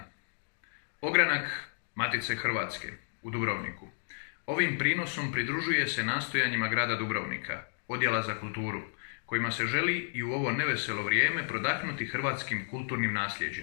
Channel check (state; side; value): silent; right; digital silence